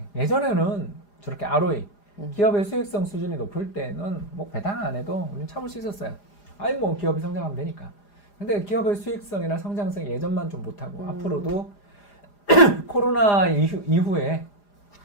예전에는 저렇게 ROE, 기업의 수익성 수준이 높을 때는 뭐 배당 안 해도 우리는 참을 수 있었어요. 뭐 기업이 성장하면 되니까. 근데 기업의 수익성이나 성장성이 예전만 좀 못하고 앞으로도 코로나 이후에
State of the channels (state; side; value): late; right; 4.9 ms